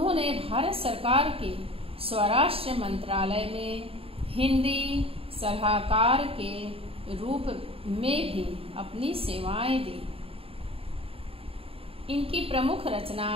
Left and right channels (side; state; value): left; late; 0.27 ms